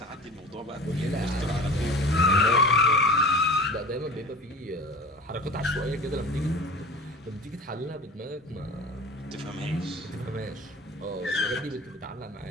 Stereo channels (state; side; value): normal; both; correlation 0.38